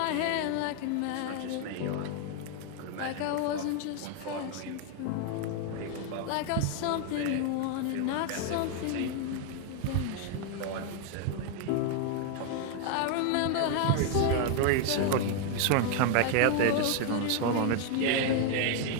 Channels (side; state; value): both; different; correlation 0.00